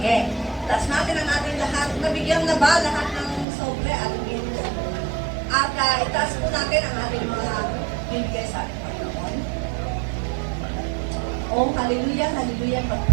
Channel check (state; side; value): drops out; left; at 3.5 s